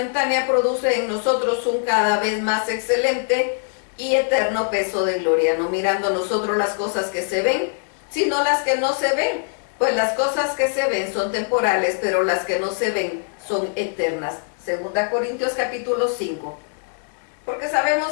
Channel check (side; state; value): right; silent; digital silence